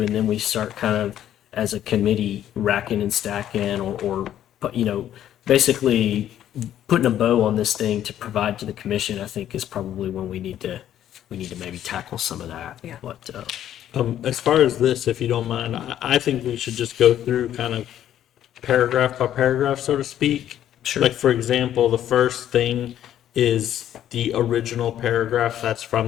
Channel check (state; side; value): quieter; right; 11.2 dB